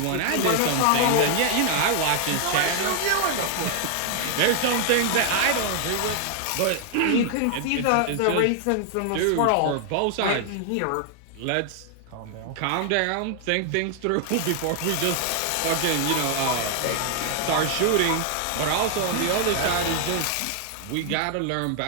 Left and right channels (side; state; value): both; different; correlation 0.00